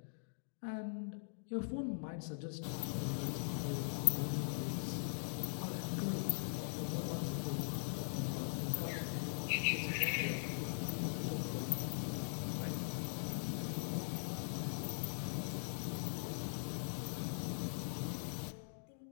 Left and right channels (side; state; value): right; silent; digital silence